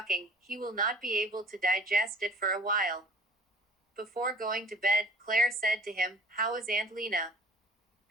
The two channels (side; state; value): both; normal; correlation 0.47